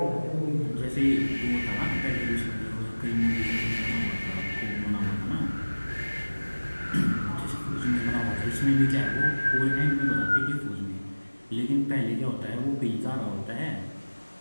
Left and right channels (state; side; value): inverted; both; correlation -1.00